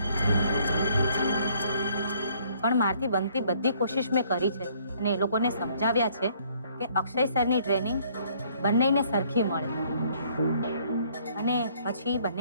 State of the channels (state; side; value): inverted; both; correlation -0.63